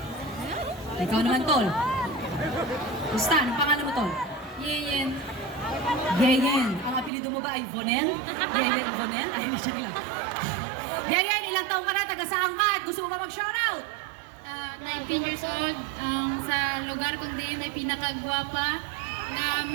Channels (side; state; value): left; drops out; at 7.1 s